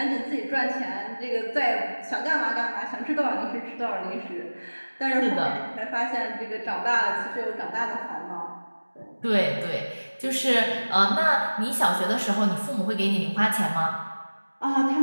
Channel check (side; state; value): both; inverted; correlation -1.00